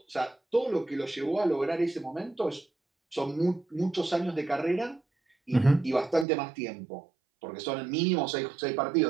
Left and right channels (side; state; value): left; drops out; at 6.2 s